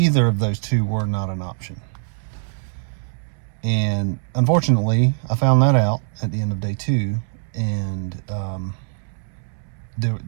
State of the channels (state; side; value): silent; left; 64 dB below the other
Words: of those two were not an option. And unfortunately, I found that out at the end of day 2, and